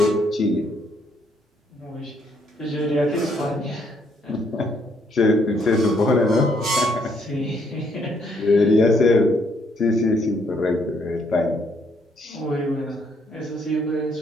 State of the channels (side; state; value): both; normal; correlation 0.70